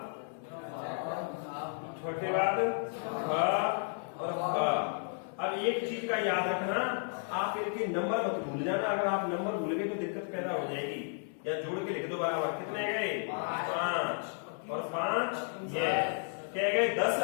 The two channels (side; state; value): right; silent; 56 dB below the other